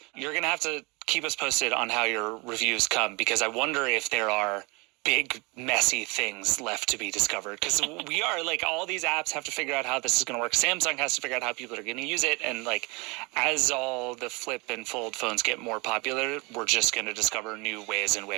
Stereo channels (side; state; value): left; quieter; 27.7 dB